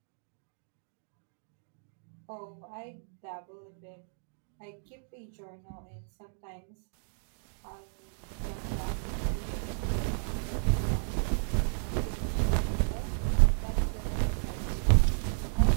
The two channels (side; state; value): left; silent; digital silence